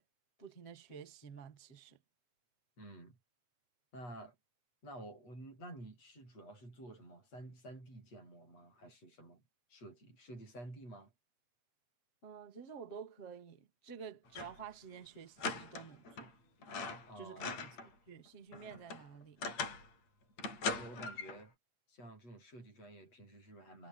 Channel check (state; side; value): late; right; 8.5 ms